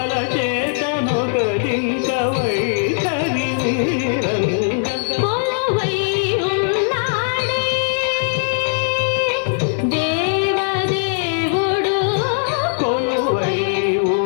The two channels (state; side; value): silent; right; digital silence